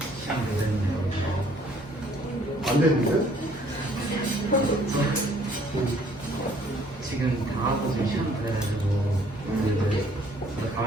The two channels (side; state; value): both; normal; correlation 0.60